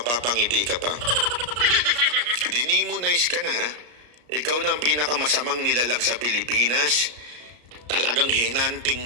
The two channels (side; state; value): left; late; 34 ms